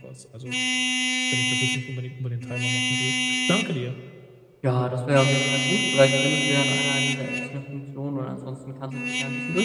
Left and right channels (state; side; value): identical; both; correlation 1.00